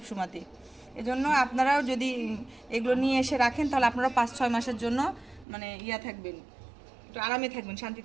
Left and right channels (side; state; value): left; drops out; at 5.5 s